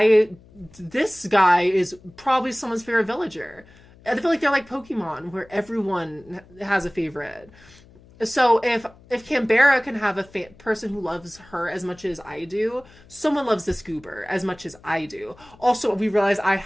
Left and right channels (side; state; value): left; noise; hum, 25 dB below the sound